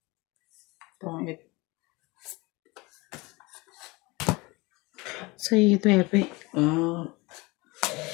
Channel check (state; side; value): quieter; right; 24.4 dB